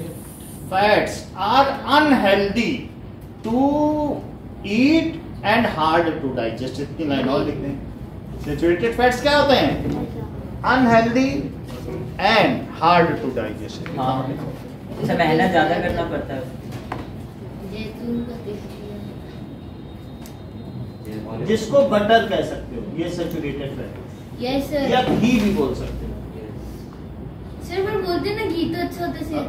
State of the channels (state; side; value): identical; both; correlation 1.00